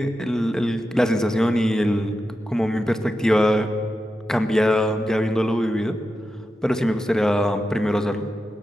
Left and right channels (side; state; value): both; normal; correlation 0.90